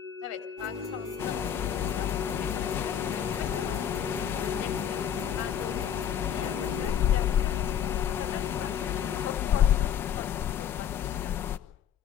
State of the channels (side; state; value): right; quieter; 9.2 dB